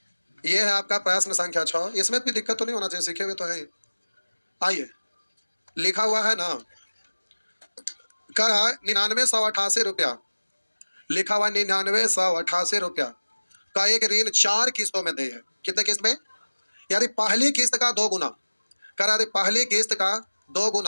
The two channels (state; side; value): inverted; both; correlation -1.00